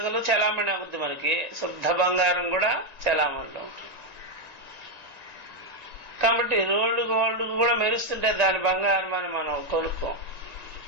చలామణి అవుద్ది, మనకి శుద్ధ బంగారం కూడా చలామణిలో ఉంటుంది. కాబట్టి రోడ్లు గోల్డ్ కూడా మెరుస్తుంటే దాని బంగారం అని మనం కొనుక్కోం.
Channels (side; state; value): left; late; 1.9 ms